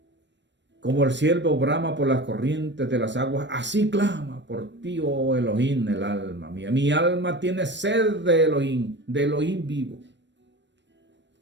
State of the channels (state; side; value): late; left; 0.53 ms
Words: como el ciervo brama por las corrientes de las aguas, así clama por ti, oh Elohim, el alma mía. Mi alma tiene sed de Elohim vivo.